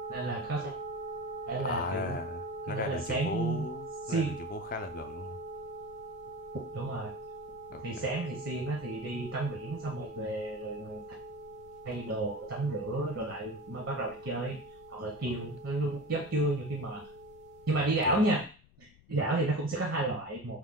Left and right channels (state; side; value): noise; left; rumble, 26 dB below the sound